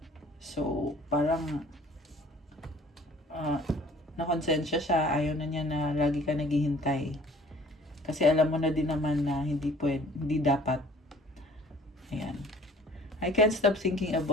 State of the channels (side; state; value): both; normal; correlation 0.52